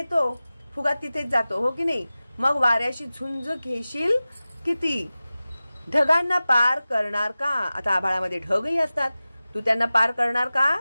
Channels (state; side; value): inverted; both; correlation -0.96